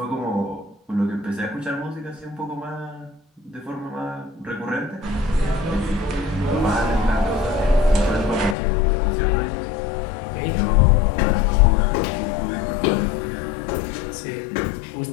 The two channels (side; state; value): right; drops out; at 8.6 s